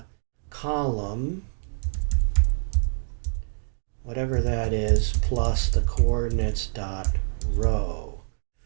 column, whatever that is, plus the coordinates dot row.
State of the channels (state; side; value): silent; left; digital silence